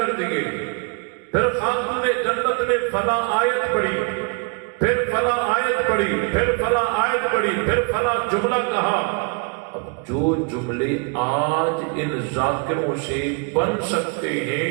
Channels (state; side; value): quieter; left; 35.3 dB